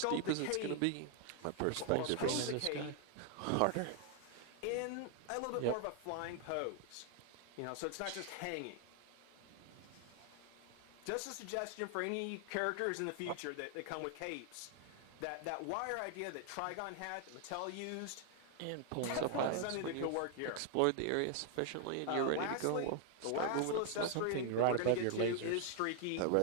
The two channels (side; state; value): both; different; correlation 0.00